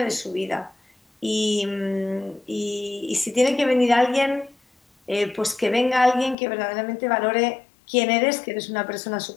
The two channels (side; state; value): right; drops out; at 6.4 s